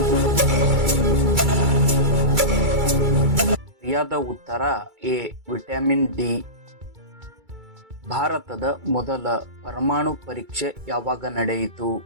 ಸರಿಯಾದ ಉತ್ತರ ಎ ವಿಟಮಿನ್ ಡಿ. ಭಾರತದ ಮೊದಲ ಪರಮಾಣು ಪರೀಕ್ಷೆ ಯಾವಾಗ ನಡೆಯಿತು?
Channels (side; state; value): left; late; 2.3 ms